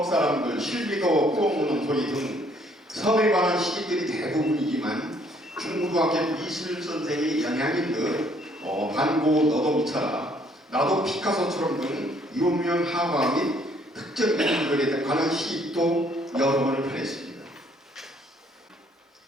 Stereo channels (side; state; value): both; normal; correlation 0.64